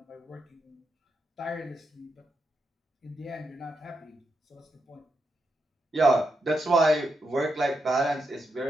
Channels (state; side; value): normal; both; correlation 0.83